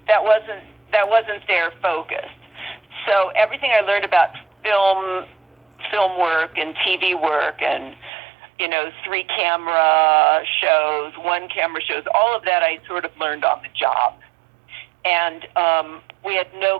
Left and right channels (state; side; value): drops out; left; at 8.1 s